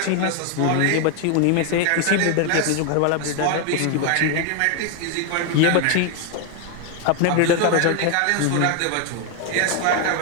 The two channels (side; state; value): both; different; correlation 0.01